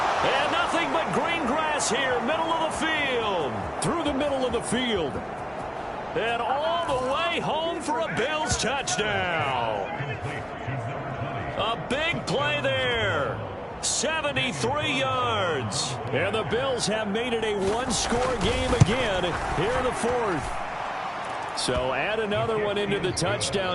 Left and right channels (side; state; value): both; identical; correlation 1.00